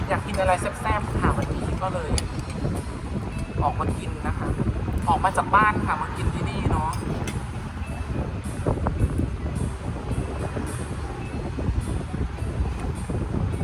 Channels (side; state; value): both; identical; correlation 1.00